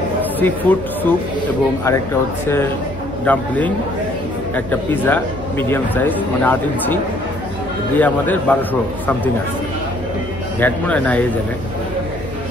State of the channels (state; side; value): normal; both; correlation 0.62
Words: সি ফুড স্যুপ এবং আরেকটা হচ্ছে ডাম্পলিং, একটা পিৎজা মিডিয়াম সাইজ মানে 8 ইঞ্চি দিয়ে আমাদের 1200 সামথিং আসছে। ভ্যাট মনে হয় না এই জায়গায়।